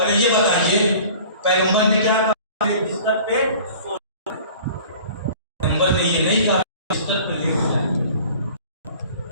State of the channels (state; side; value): inverted; both; correlation -0.45